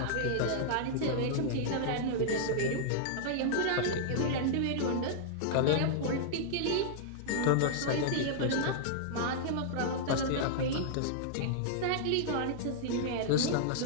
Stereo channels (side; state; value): both; different; correlation -0.02